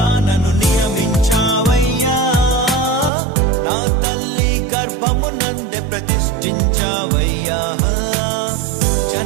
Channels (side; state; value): left; drops out; at 3.1 s